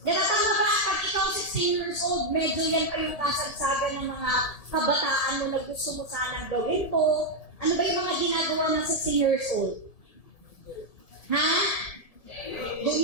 Diba? Tama ba? Pag ikaw 16 years old, medyo yan pa yung kasagsagan ng mga kabataan mo na gusto mo sanang gawin po. Ano ba yung mga ginagawa ng 16 years old? Ha?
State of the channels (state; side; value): late; right; 1.7 ms